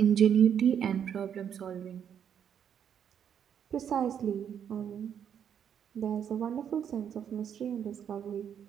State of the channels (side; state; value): left; quieter; 8.6 dB